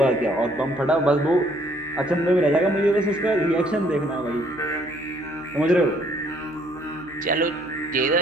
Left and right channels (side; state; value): left; noise; hum, 24 dB below the sound